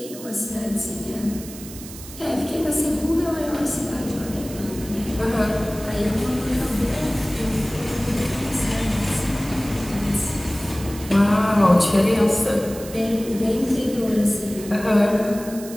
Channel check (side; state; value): right; noise; hiss, 15 dB below the sound